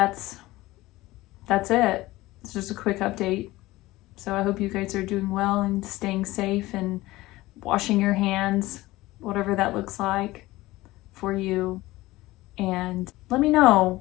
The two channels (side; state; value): right; quieter; 18.5 dB